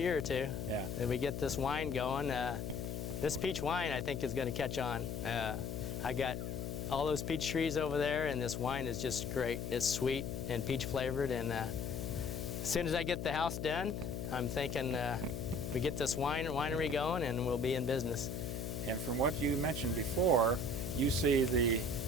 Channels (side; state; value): left; noise; hum, 4 dB below the sound